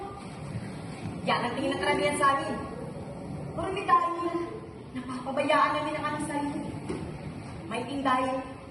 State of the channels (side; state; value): both; identical; correlation 1.00